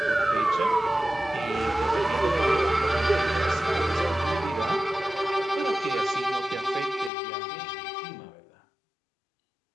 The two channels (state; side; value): drops out; right; at 7.1 s